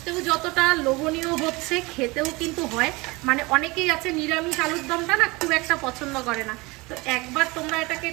যতটা লোভনীয় হচ্ছে, খেতেও কিন্তু হয়। মানে অনেকেই আছে নিরামিষ আলুর দমটা না খুব একটা পছন্দ করে না। তো একবার তোমরা এটাকে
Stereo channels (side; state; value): left; quieter; 23.9 dB